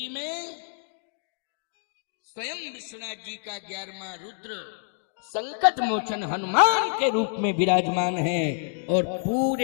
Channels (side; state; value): right; silent; digital silence